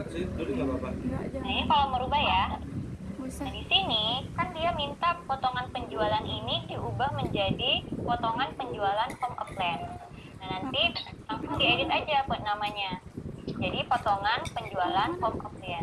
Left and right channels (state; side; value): identical; both; correlation 1.00